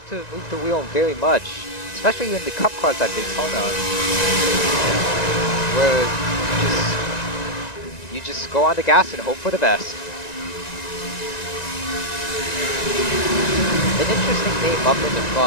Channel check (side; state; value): right; late; 1.9 ms